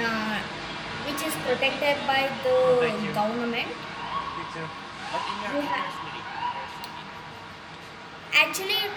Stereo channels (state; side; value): identical; both; correlation 1.00